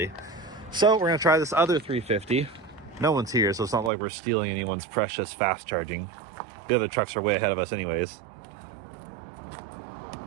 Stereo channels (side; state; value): left; drops out; at 3.9 s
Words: So we're gonna try this other 350 no one's here, so it's not like we're stealing anyone's precious fast charging. The other trucks are way ahead of us anyways.